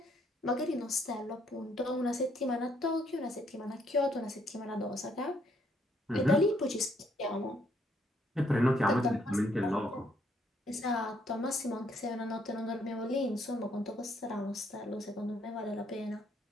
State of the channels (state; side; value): normal; both; correlation 0.70